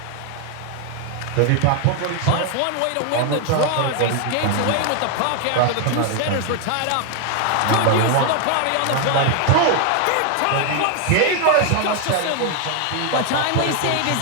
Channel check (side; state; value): both; different; correlation 0.01